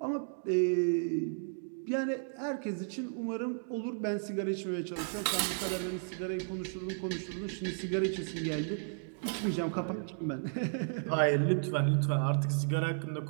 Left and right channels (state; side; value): silent; left; digital silence